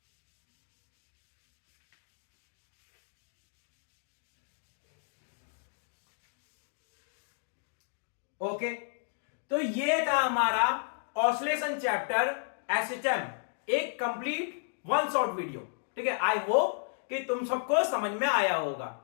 ओके, तो ये था हमारा ऑसिलेशन चैप्टर एसएचएम, एक कंप्लीट वन शॉट वीडियो, ठीक है। आई होप कि तुम सबको समझ में आया होगा,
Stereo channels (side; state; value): right; silent; digital silence